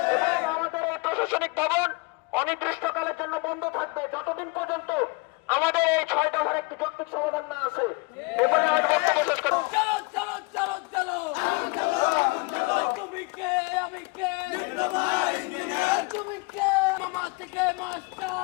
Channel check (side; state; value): right; quieter; 27.4 dB